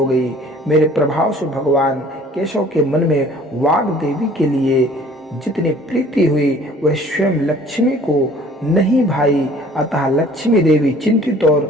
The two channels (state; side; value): normal; both; correlation 0.52